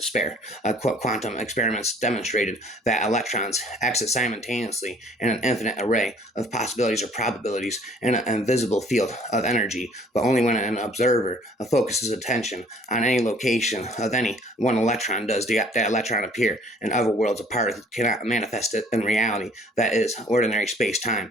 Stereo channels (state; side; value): normal; both; correlation 0.56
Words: spare. Quantum experiments demonstrated that electrons exit simultaneously in an infinite array of possibilities or probabilities in an invisible field of energy, but only when an observer focuses attention on any location of any one electron does that electron appear. In other worlds, a particle cannot manifest it in reality. That is ordinary space-time